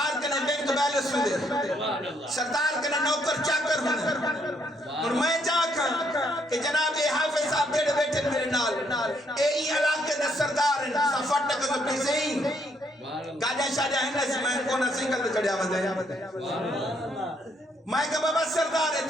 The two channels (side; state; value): both; normal; correlation 0.71